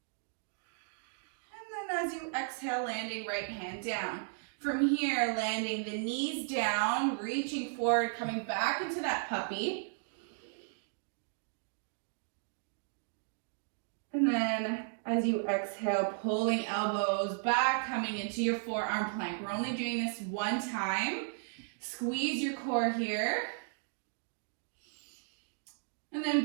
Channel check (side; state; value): left; silent; digital silence